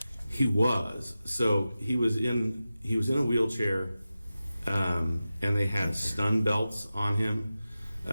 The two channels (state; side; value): inverted; both; correlation -0.94